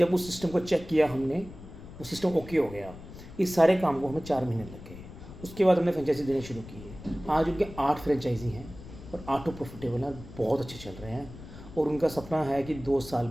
उस सिस्टम को चेक किया हमने, वो सिस्टम ओके हो गया। इस सारे काम को हमें 4 महीने लग गए। उसके बाद हमने फ्रेंचाइजी देनी शुरू की है। आज उनके 8 फ्रेंचाइजी हैं और 8 प्रॉफिटेबल हैं, बहुत अच्छे चल रहे हैं। और उनका सपना है कि 2 साल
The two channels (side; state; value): left; noise; rumble, 15 dB below the sound